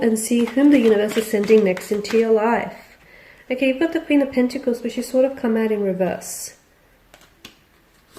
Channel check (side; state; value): both; identical; correlation 1.00